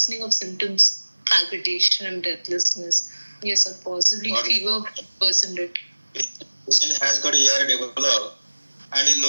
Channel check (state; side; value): inverted; both; correlation -1.00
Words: of symptoms, palpitation and breathlessness. Yes, sir, possibly What? fever worsened it. Patient has got ER developed and in